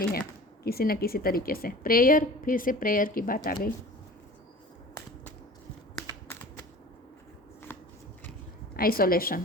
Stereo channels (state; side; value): normal; both; correlation 0.41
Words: है किसी न किसी तरीके से। प्रेयर, फिर से प्रेयर की बात आ गई।